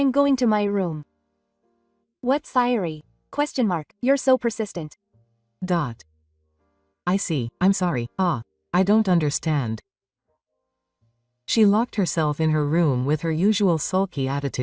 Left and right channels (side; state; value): both; identical; correlation 1.00